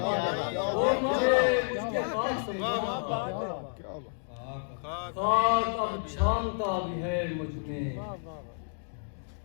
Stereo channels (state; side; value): silent; right; digital silence